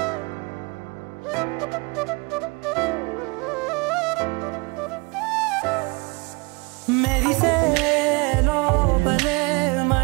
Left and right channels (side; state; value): left; quieter; 28.0 dB